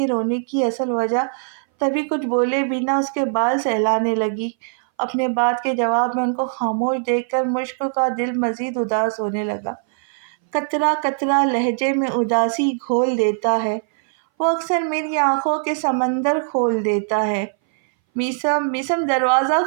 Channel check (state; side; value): silent; left; 61 dB below the other